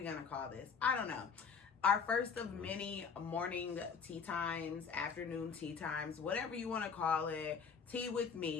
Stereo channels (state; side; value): quieter; right; 6.1 dB